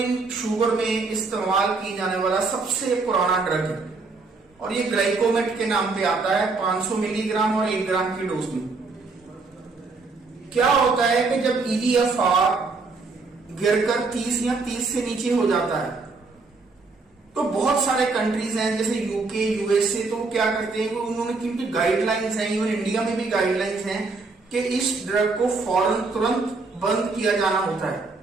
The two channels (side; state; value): left; quieter; 4.0 dB